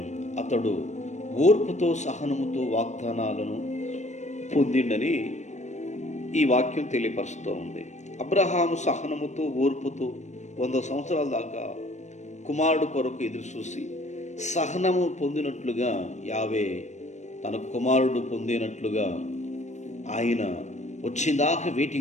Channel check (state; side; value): late; right; 0.34 ms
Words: అతడు ఓర్పుతో సహనముతో వాగ్దానాలను పొందిండని ఈ వాక్యం తెలియపరుస్తూ ఉంది. అబ్రహాము సహనముతో ఓర్పుతో 100 సంవత్సరాల దాకా కుమారుడు కొరకు ఎదురు చూసి సహనము పొందినట్లుగా యావే తన కుమారుడు పొందినట్లుగా ఆయన వచ్చిందాకా